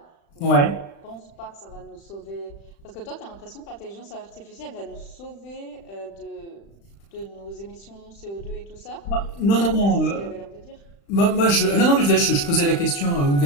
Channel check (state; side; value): late; right; 35 ms